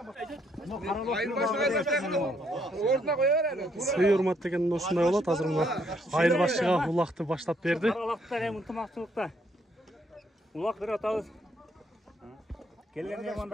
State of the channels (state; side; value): normal; both; correlation 0.71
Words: Сый урмат деген ушундай болот. Азыр мына айырбашчыга улакты баштап берди. Улакта эми ынтымактуулукта. Улак берип атабыз. Келген